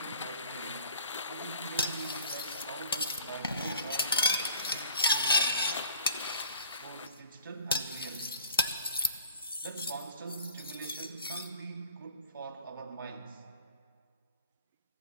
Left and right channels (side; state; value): both; inverted; correlation -0.51